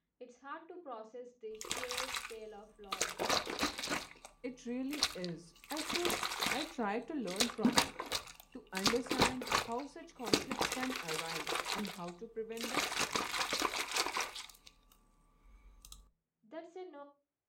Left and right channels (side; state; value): both; identical; correlation 1.00